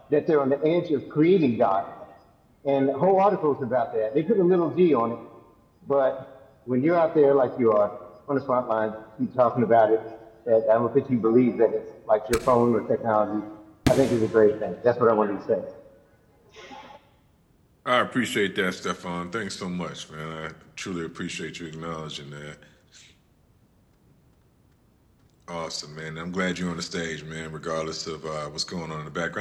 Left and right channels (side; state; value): both; identical; correlation 1.00